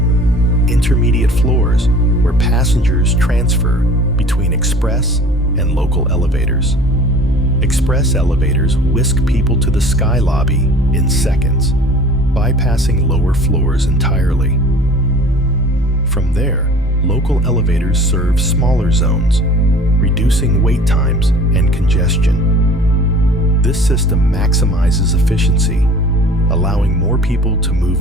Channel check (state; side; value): normal; both; correlation 0.47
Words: intermediate floors where passengers transfer between express and local elevators. Express elevators whisk people to the sky lobby in seconds, bypassing lower floors entirely. From there, local elevators serve smaller zones, reducing wait times and congestion. This system maximizes efficiency, allowing more people to move